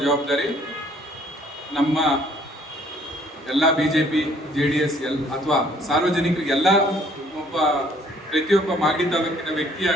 ಜವಾಬ್ದಾರಿ ನಮ್ಮ ಎಲ್ಲ BJP JDS ಅಥವಾ ಸಾರ್ವಜನಿಕರಿಗೆಲ್ಲ ಪ್ರತಿಯೊಬ್ಬ ಮಾಗಡಿ ತಾಲೂಕಿನ ವ್ಯಕ್ತಿಯ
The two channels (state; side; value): normal; both; correlation 0.61